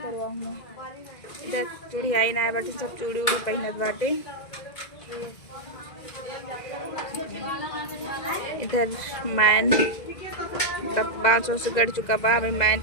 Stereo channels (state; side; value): late; right; 2.0 ms